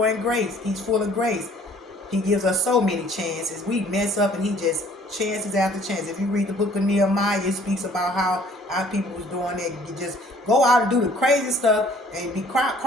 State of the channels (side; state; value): both; normal; correlation 0.57